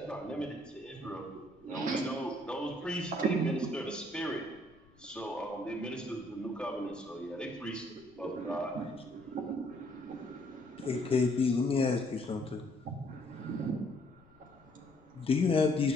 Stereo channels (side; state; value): left; noise; rumble, 28 dB below the sound